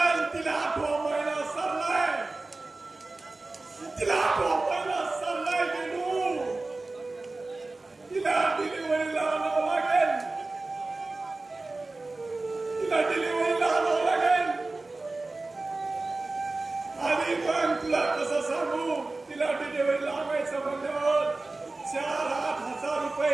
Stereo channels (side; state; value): left; quieter; 3.3 dB